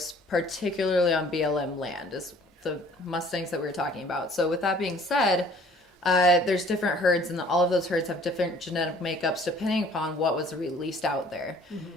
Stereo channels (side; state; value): both; normal; correlation 0.54